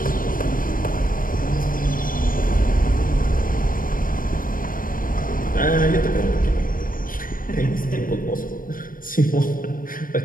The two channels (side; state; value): right; late; 0.40 ms